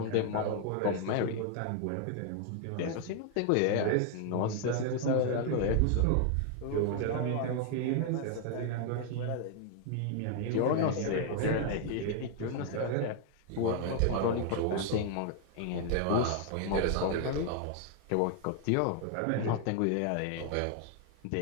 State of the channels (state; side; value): different; both; correlation 0.00